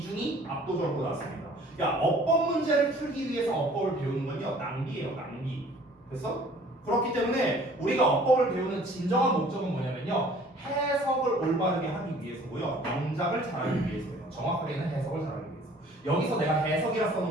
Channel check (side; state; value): both; normal; correlation 0.53